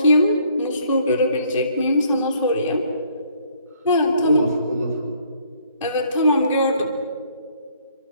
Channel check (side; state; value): both; inverted; correlation -0.64